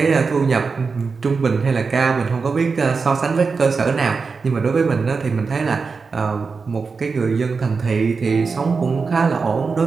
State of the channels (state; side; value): quieter; left; 4.8 dB